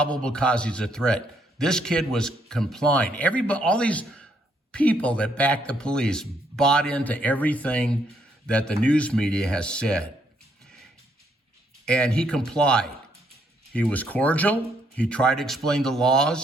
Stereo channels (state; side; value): normal; both; correlation 0.72